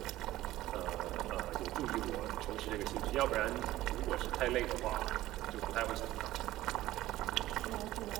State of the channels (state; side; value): quieter; left; 15.6 dB